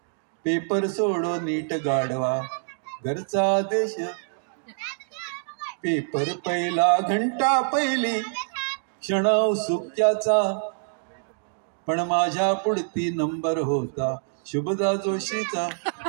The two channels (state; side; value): silent; left; digital silence